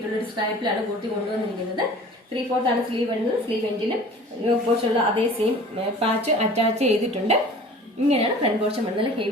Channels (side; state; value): both; normal; correlation 0.44